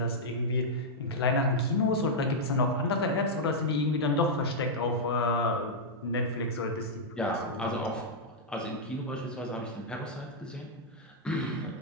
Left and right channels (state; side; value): normal; both; correlation -0.06